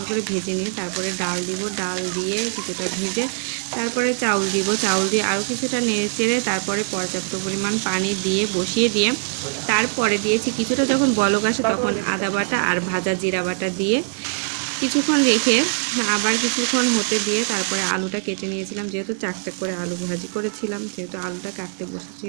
করে ভেজে নিই, তারপরে ডাল দিব, ডাল দিয়ে কিছুটা ভেজে তারপরে চাউল দিব, চাউল দিয়ে আরও কিছুটা নেড়ে চেড়ে তারপরে পর্যাপ্ত পরিমাণ পানি দিয়ে বসিয়ে দিয়ে তারপরে দিয়েছি কিছুটা, যখন বলক আসে তখন আদা বাটা আর ভাজা জিরা বাটা দিয়ে কিছুক্ষণ রেখে আবার কিছুক্ষণ হতে দিয়ে তারপরে আলুটা কেটে নিয়েছিলাম। যেহেতু চাকচাক করে আলু ভাজি করেছিলাম, সেহেতু আলুটা কাটতে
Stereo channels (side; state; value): left; silent; 60 dB below the other